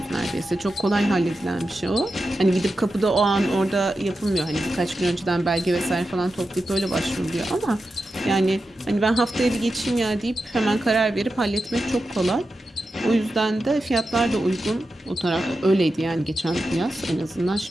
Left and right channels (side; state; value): both; normal; correlation 0.91